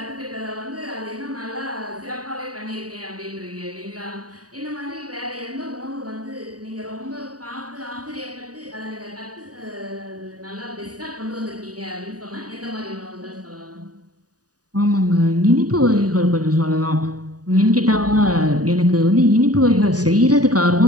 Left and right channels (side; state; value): left; late; 0.68 ms